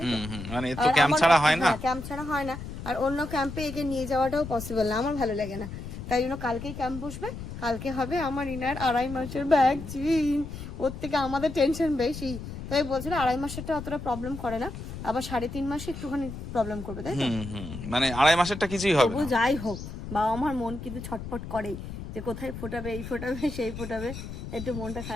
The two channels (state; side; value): noise; left; rumble, 9 dB below the sound